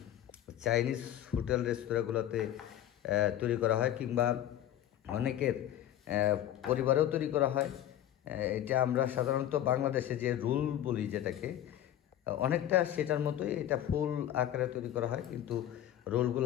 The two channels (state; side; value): quieter; right; 11.8 dB